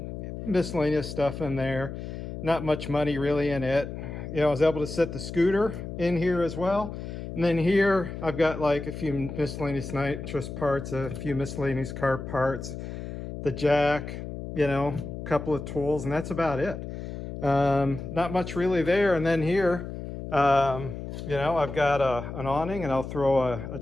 miscellaneous stuff in there. not much money really in it. You know, I was able to set the scooter in here as well. And then here I've got like a few miscellaneous nitrous parts, a few miscellaneous car parts, the jack, you know, a couple of tools, and that's about it. Not much really there. And then here, you know, I've got an awning, and I'll throw a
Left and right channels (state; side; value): noise; left; hum, 8 dB below the sound